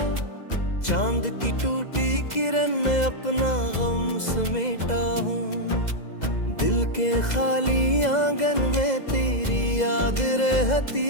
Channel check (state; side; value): late; right; 2.0 ms